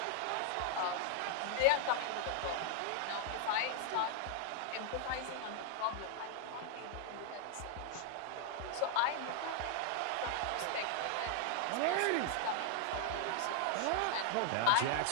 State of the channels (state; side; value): different; both; correlation 0.00